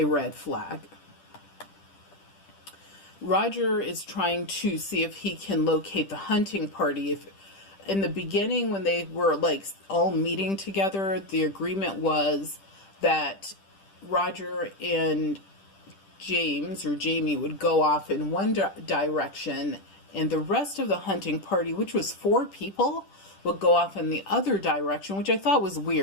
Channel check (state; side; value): late; right; 10 ms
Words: red flag. Roger is trying to see if he can locate the hunting party. If in the beginning, when they were like all meeting together, the agreement was that Roger and James or Jamie would go off in one direction, and the rest of the hunting party, which was 4 people, would go off in the other direction, which I thought was